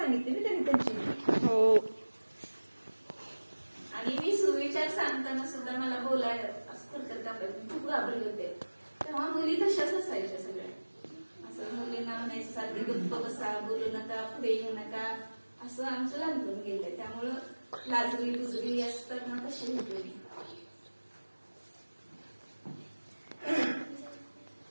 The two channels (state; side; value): inverted; both; correlation -1.00